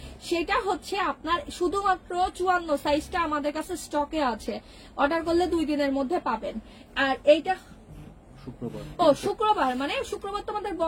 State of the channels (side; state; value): both; identical; correlation 1.00